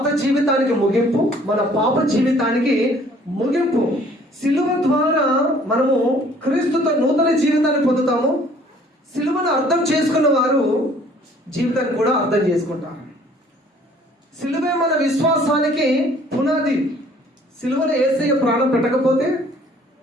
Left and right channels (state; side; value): normal; both; correlation 0.57